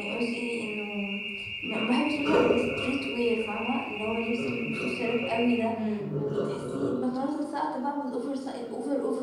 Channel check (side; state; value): both; identical; correlation 1.00